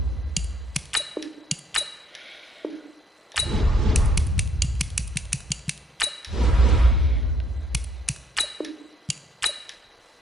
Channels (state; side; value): normal; both; correlation 0.67